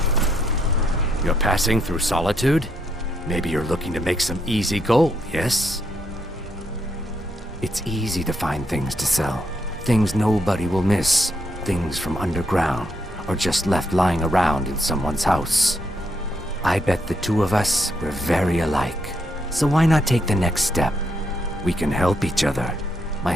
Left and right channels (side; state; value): both; normal; correlation 0.76